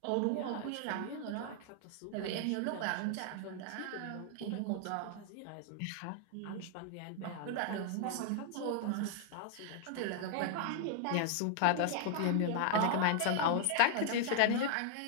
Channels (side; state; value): both; different; correlation 0.00